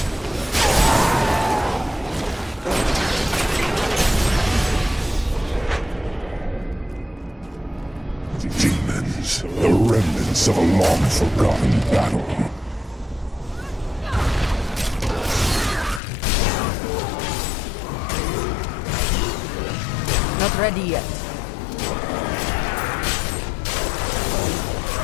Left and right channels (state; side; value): drops out; right; at 16.0 s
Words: Demons, the remnants of a long-forgotten battle. Not ready yet.